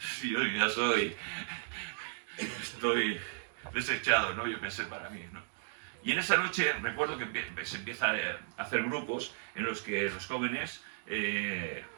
yo ya estoy desechado, ¿no? Yo pensé para mí, ¿no? Y en esa noche recuerdo que se empieza a hacer grupos en los que los jóvenes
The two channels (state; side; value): silent; left; digital silence